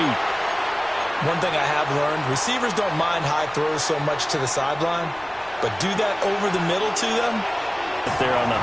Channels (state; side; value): noise; left; rumble, 25 dB below the sound